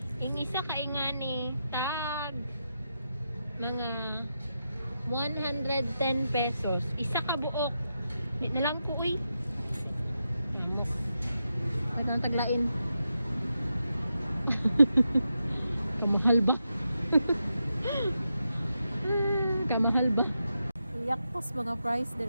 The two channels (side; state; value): both; inverted; correlation -0.86